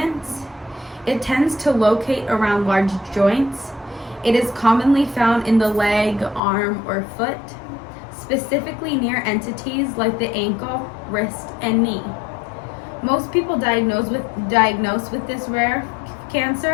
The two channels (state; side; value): drops out; right; at 6.4 s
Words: It tends to locate around large joints. It is commonly found in the leg, arm, or foot, specifically near entities like the ankle, wrist, and knee. Most people diagnosed with this rare